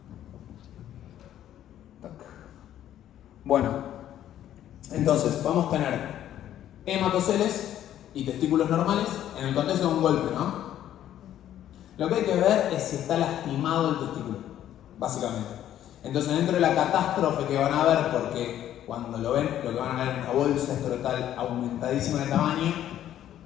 Tac. Bueno, entonces vamos a tener hematoceles y testículos normales en el contexto de un golpe, ¿no? Lo que hay que ver es si está lastimado el testículo, básicamente. Entonces, dentro de la catástrofe que van a ver, porque cuando lo ven, lo que van a ver es una bolsa escrotal aumentadísima de tamaño,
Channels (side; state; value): right; quieter; 11.5 dB